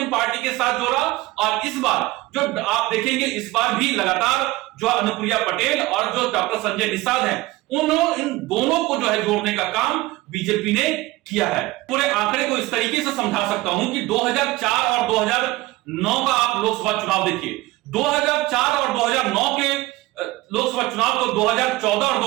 पार्टी के साथ जोड़ा, और इस बार जो आप देखेंगे इस बार भी लगातार जो अनुप्रिया पटेल और जो डॉक्टर संजय निषाद हैं इन दोनों को जो है जोड़ने का काम बीजेपी ने किया है। पूरे आंकड़े को इस तरीके से समझा सकता हूं कि 2004 और 2009 का आप लोकसभा चुनाव देखिए, 2004 और 2009 के लोकसभा चुनाव को 2014 और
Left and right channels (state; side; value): quieter; left; 19.0 dB